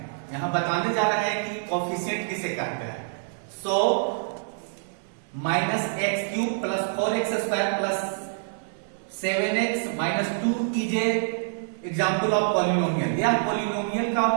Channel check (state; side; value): silent; left; digital silence